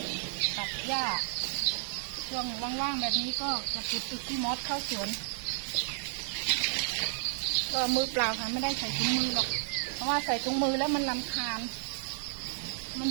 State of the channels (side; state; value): left; silent; 56 dB below the other